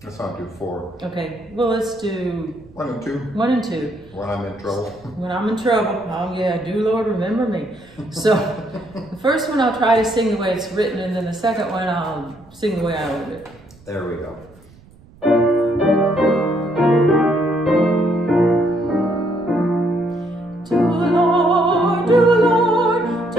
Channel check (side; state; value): right; noise; rumble, 26 dB below the sound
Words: Let's not do 4. Okay, well, let's do... 1 and 2. 1 and 2. When I'm in trouble. When I'm in trouble. Oh yeah, do Lord remember me. So, the first one I'll try to sing the way it's written, and then the second one I'll sing the way I learned it. There we go.